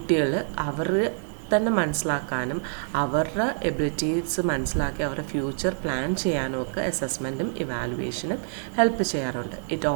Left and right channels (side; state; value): left; silent; digital silence